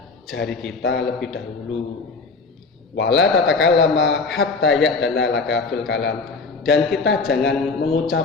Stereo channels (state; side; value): quieter; right; 4.1 dB